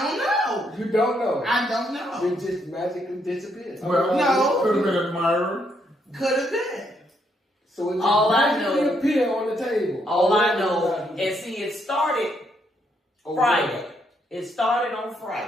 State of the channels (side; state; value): both; normal; correlation 0.75